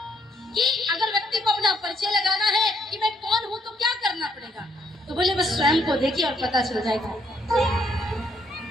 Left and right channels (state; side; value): normal; both; correlation 0.71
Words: कि अगर व्यक्ति को अपना परिचय लगाना है कि मैं कौन हूँ तो क्या करना पड़ेगा, तो बोले बस स्वयं को देखिए और पता चल जाएगा।